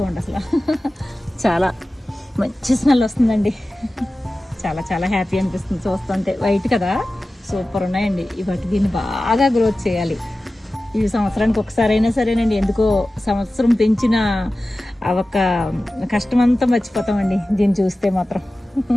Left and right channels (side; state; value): both; normal; correlation 0.95